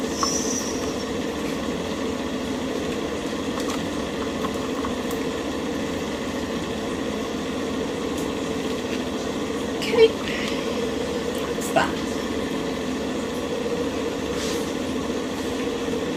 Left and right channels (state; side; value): identical; both; correlation 1.00